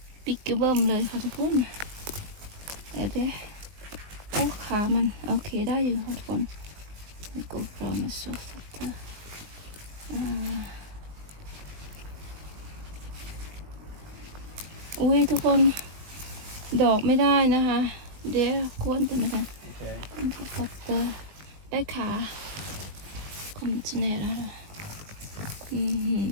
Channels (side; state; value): left; late; 20 ms